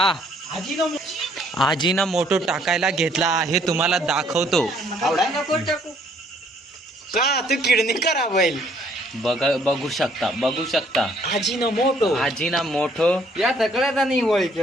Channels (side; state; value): both; normal; correlation 0.64